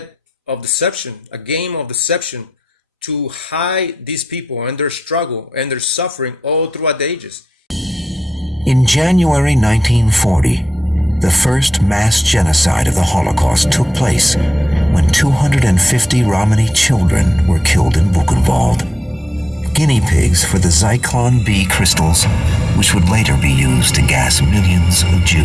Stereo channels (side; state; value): both; normal; correlation 0.89